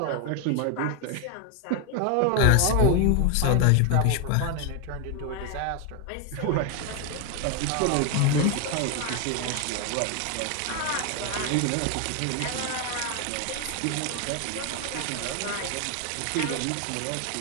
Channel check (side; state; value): both; different; correlation 0.01